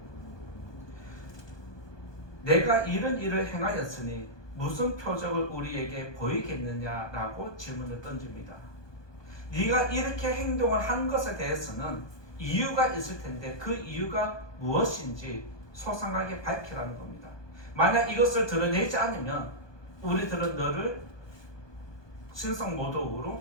내가 이런 일을 행하였으니 무슨 표적을 우리에게 보이겠느냐라고 질문을 던집니다. 네가 이렇게 행동을 한 것에 대해서는 이유가 있을 텐데 그 이유가 무엇인지 소상하게 밝히라는 겁니다. 만약 이것을 드러내지 않으면 우리들은 너를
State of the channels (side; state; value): right; late; 1.2 ms